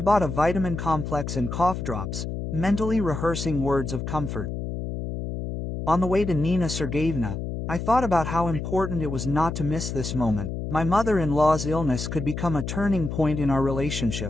bought a vitamin complex and cough drops, mentally rehearsing words of comfort. On the way to Nina Sergeyevna, I thought about how important it was not to miss this moment. My mother-in-law's illness could become a turning point in our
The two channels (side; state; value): left; noise; hum, 5 dB below the sound